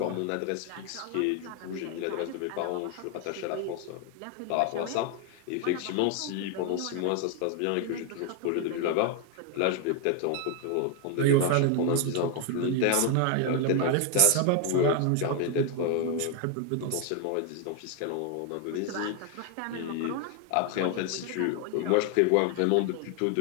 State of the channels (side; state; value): both; different; correlation 0.01